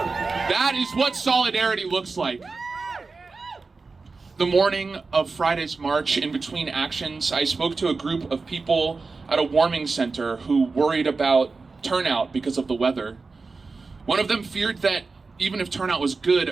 That is what solidarity looks like. The morning of Friday's march, in between actions, I spoke to a group of people at a warming center who worried about turnout because of the weather. One of them feared that even if turnout was good,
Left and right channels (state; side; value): quieter; left; 4.1 dB